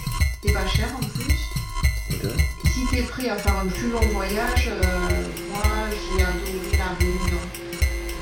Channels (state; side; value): identical; both; correlation 1.00